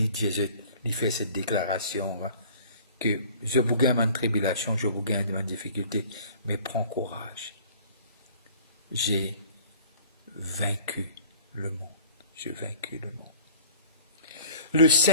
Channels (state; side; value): inverted; both; correlation -0.48